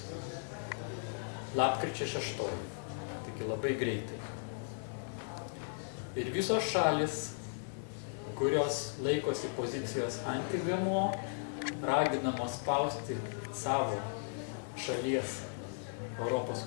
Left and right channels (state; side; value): silent; right; digital silence